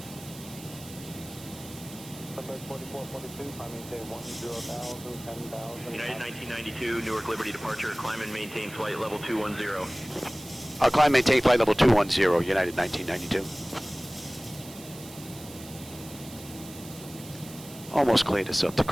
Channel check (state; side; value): noise; right; hiss, 16 dB below the sound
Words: Bird 4442, climb maintain 10,000, 10,000. United 1992, Newark Liberty departure, climb and maintain flight level 210. I'll climb maintain flight level 210, United 1992. Almost cleared us up to